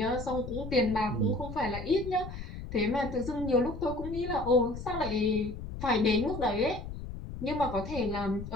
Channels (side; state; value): left; noise; rumble, 9 dB below the sound